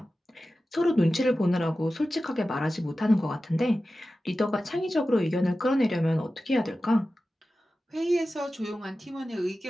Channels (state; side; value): normal; both; correlation 0.94